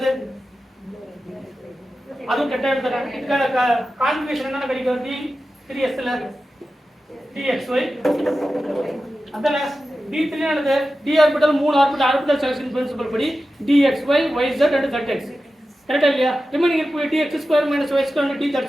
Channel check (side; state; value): both; normal; correlation 0.93